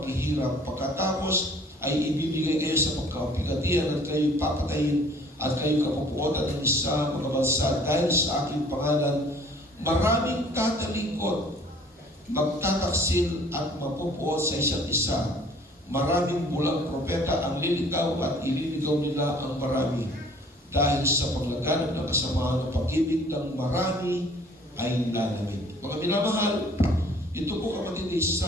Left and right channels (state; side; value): normal; both; correlation 0.54